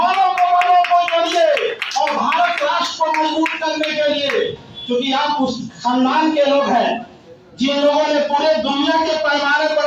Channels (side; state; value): both; identical; correlation 1.00